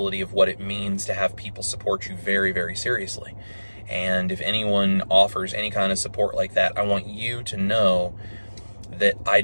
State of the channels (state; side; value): inverted; both; correlation -1.00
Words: of what it means to have people support you very, very seriously. And if anyone offers any kind of support like that, I want you to know that I